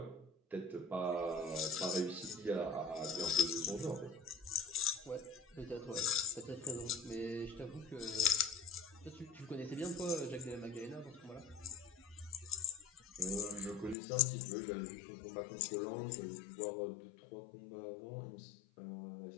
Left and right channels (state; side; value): drops out; right; at 14.0 s